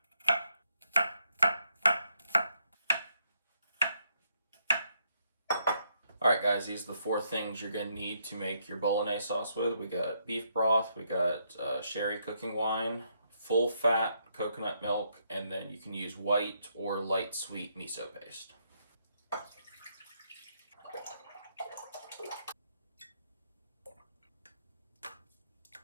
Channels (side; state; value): both; inverted; correlation -0.76